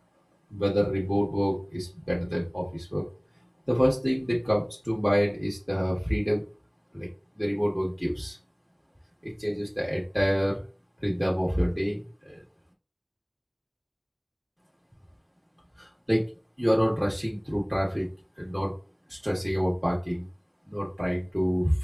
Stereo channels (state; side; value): identical; both; correlation 1.00